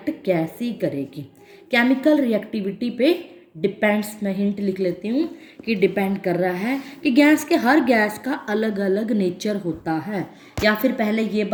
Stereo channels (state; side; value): identical; both; correlation 1.00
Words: कैसी करेगी। केमिकल रिएक्टिविटी पे डिपेंड्स, मैं हिंट लिख लेती हूँ कि डिपेंड कर रहा है कि हर गैस का अलग अलग नेचर होता है, या फिर पहले ये